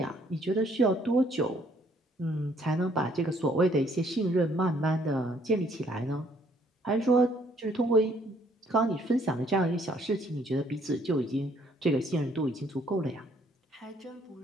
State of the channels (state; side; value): normal; both; correlation 0.64